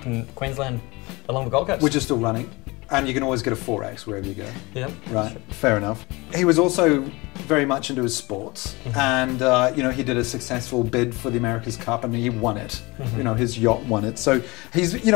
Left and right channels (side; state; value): right; quieter; 24.2 dB